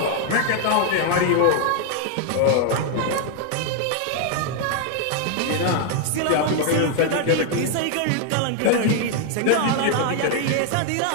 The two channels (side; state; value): both; different; correlation 0.00